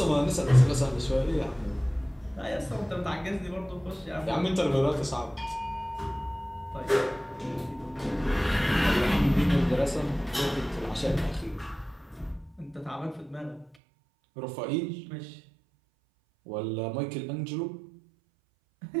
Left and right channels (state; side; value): drops out; left; at 13.8 s